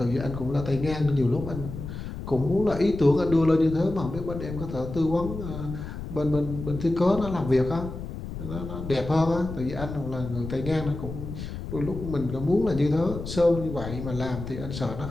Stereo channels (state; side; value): noise; left; rumble, 8 dB below the sound